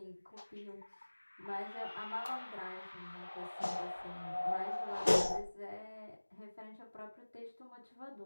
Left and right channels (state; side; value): inverted; both; correlation -1.00